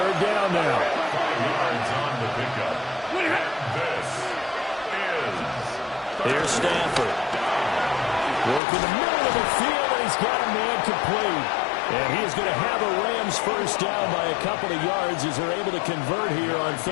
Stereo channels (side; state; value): right; drops out; at 8.6 s